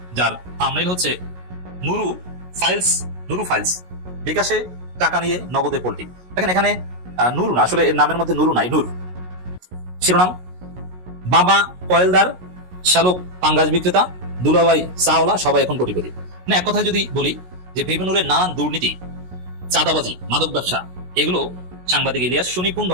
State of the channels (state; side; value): late; left; 16 ms